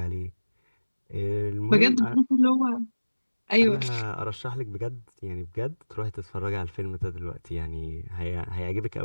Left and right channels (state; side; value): inverted; both; correlation -1.00